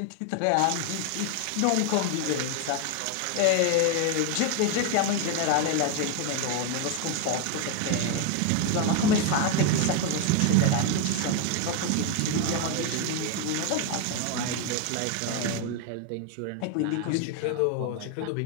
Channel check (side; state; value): both; different; correlation 0.01